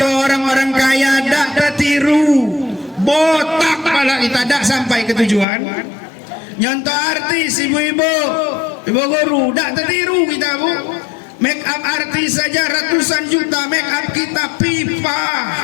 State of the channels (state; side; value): drops out; right; at 5.5 s